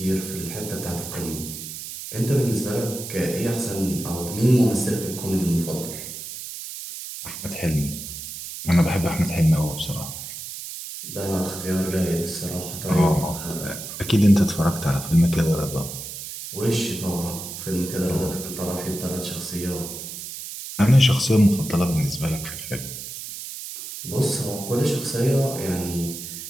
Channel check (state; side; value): noise; right; hiss, 9 dB below the sound